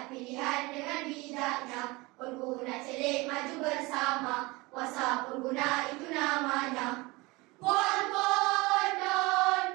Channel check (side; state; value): left; quieter; 23.4 dB